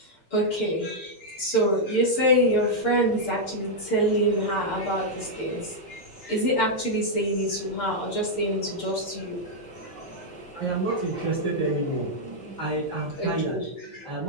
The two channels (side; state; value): right; late; 6.7 ms